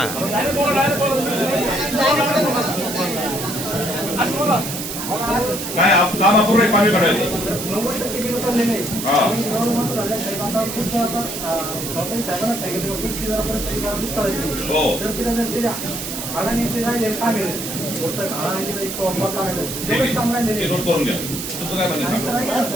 काय काम अपूर्ण आहे, पाणी काढायचं. हा हो ते नोट करून घ्या. तुमचं काय म्हणणं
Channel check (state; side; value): noise; right; hiss, 6 dB below the sound